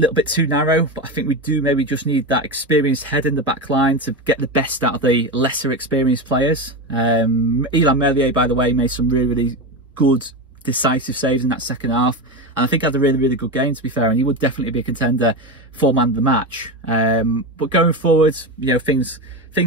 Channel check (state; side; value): normal; both; correlation 0.19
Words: bit too narrow, but I think we do maybe just need that experienced head in the back line to get the best out of the lesser experienced players. 𝐼𝐍 Meslier, by the way, made some really, really good, decisive saves in that second half. And I think had a really, really good game, to be fair, and he would definitely be a contender for man of the match. But going forward, you know, things,